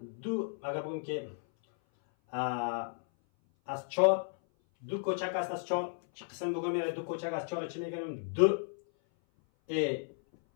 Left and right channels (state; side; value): silent; right; 55 dB below the other